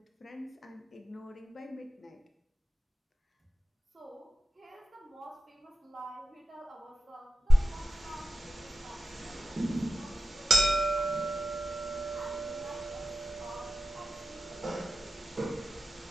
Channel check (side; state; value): both; normal; correlation 0.94